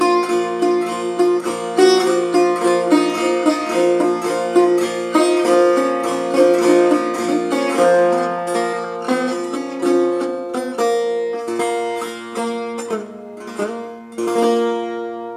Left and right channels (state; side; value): identical; both; correlation 1.00